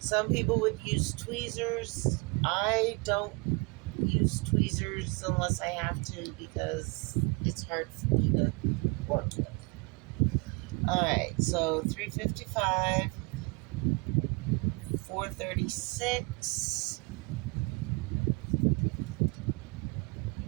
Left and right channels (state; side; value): quieter; left; 29.8 dB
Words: people would use tweezers. I don't use tweezers unless I have to because it's hard for me to work with. Alright, so 355, 436,